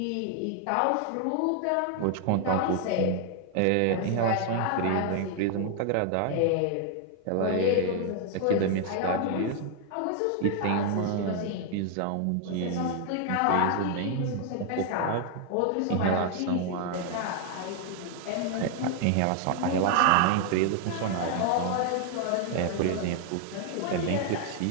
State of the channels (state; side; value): different; both; correlation 0.00